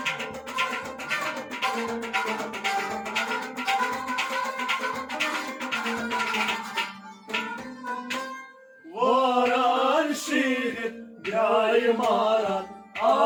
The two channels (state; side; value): identical; both; correlation 1.00